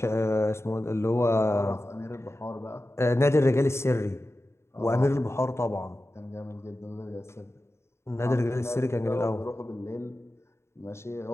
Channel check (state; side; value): late; right; 0.13 ms